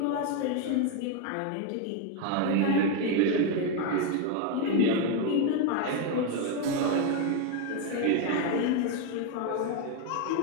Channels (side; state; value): both; different; correlation 0.01